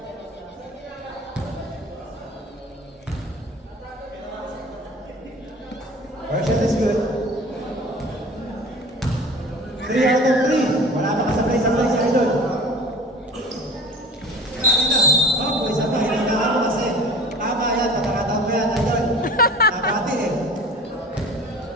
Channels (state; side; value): normal; both; correlation 0.41